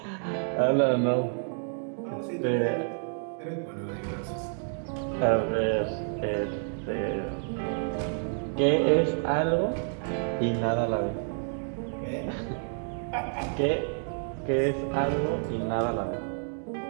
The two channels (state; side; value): silent; left; 58 dB below the other